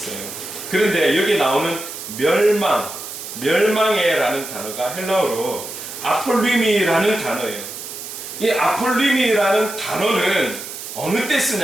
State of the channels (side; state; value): right; noise; hiss, 10 dB below the sound